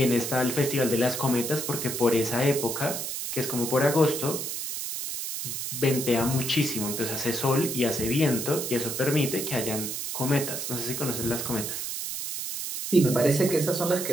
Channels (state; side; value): noise; right; hiss, 4 dB below the sound